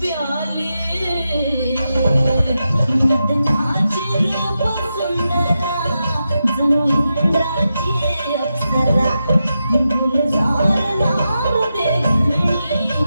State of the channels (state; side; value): inverted; both; correlation -0.89